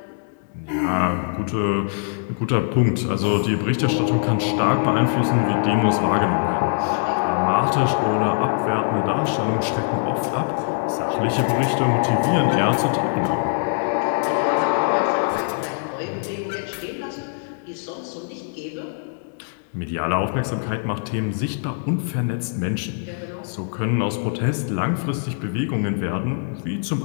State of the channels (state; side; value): silent; right; 64 dB below the other